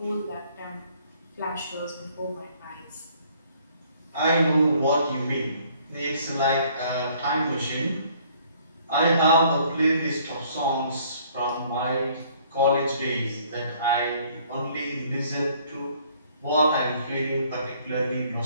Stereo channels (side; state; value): both; inverted; correlation -0.60